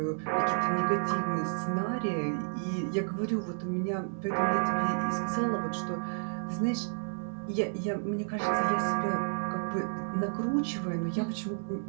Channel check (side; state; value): left; silent; digital silence